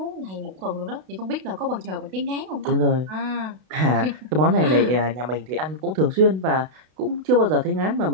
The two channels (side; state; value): left; late; 32 ms